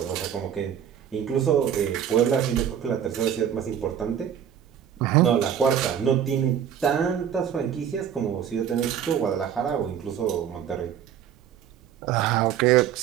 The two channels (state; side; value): quieter; left; 9.1 dB